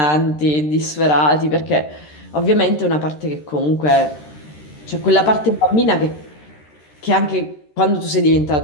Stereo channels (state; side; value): late; right; 13 ms